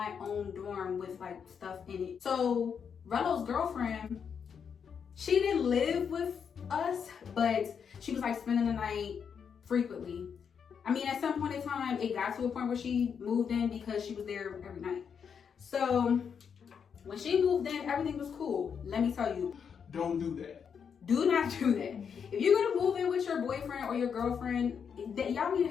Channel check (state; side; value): quieter; right; 7.0 dB